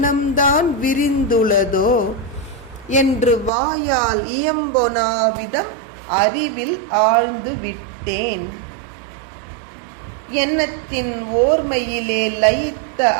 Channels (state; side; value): drops out; left; at 3.5 s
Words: விரிந்துள்ளதோ என்று வாயால் இயம்பொனாவிதம் அறிவில் ஆழ்ந்து விட்டேன். எண்ணத்தின் ஓர்மையிலே லயித்த